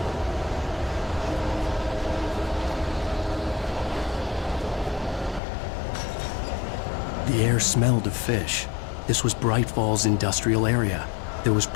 The air smelled of fish. This was Bright Falls industrial area. There was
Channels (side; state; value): right; drops out; at 5.4 s